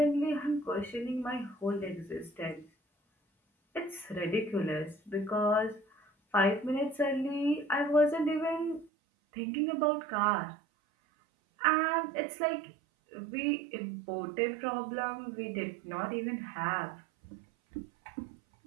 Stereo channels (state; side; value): drops out; left; at 8.9 s